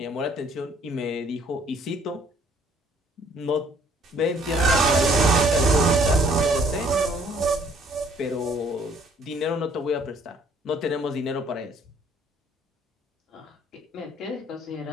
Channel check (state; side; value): normal; both; correlation 0.61